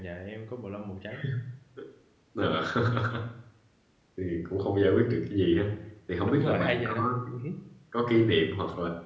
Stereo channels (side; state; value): both; identical; correlation 1.00